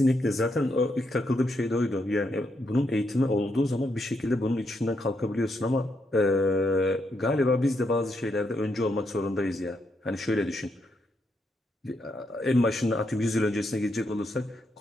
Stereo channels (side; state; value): both; normal; correlation 0.79